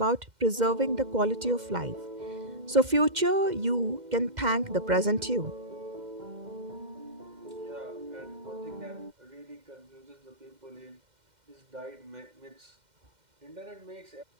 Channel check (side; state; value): left; late; 2.1 ms